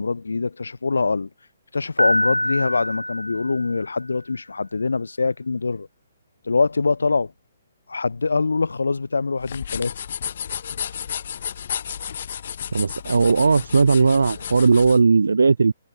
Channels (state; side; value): inverted; both; correlation -0.91